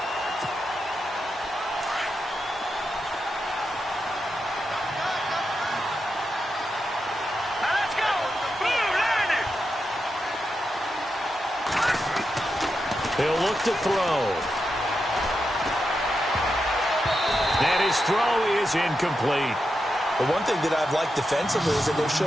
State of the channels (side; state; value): both; normal; correlation 0.87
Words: He'll look to throw. And his throw is incomplete. The one thing that I've liked defensively is that they've